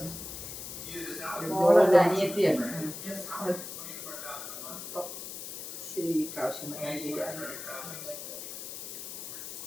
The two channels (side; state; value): left; noise; hiss, 9 dB below the sound